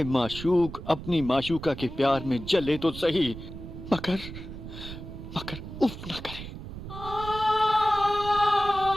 माशूक अपनी माशूका के प्यार में जले तो सही, मगर मगर उफ न करे।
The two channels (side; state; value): right; noise; rumble, 11 dB below the sound